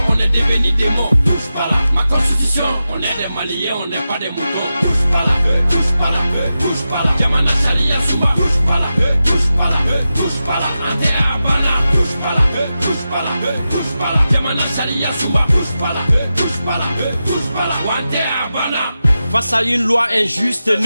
on est devenu des mots. Touche pas là, ma constitution, on est des Maliens, on n'est pas des moutons. Touche pas là, touche pas là, touche pas là. Yamana Sharia Souma, touche pas là, touche pas là, touche pas là. Ante Abana, touche pas là, touche pas là, touche pas là. Yamana Sharia Souma, touche pas là, touche pas là, touche pas là. Ante Abana. Face à une loi injuste,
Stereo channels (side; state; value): both; inverted; correlation -0.92